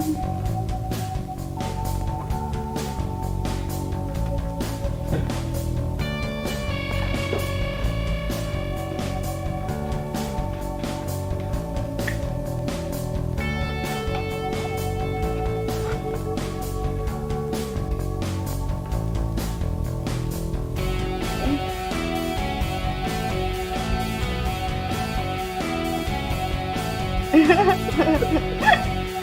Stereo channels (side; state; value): both; identical; correlation 1.00